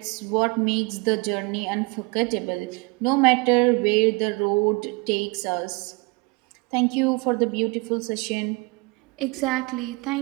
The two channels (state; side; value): quieter; left; 27.1 dB